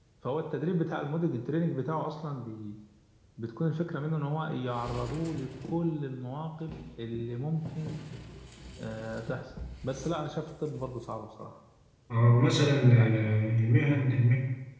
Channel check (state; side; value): identical; both; correlation 1.00